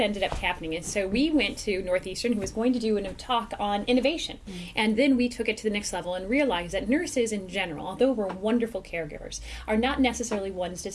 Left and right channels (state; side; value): identical; both; correlation 1.00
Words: up happening is, so we went to Northeastern, who was going to do a talk on innovation. And then we took it to the next level and realized that nurses in general, although we're wonderful caregivers, are not necessarily ones to